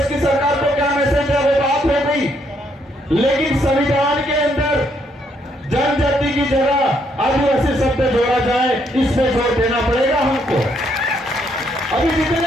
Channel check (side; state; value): both; normal; correlation 0.72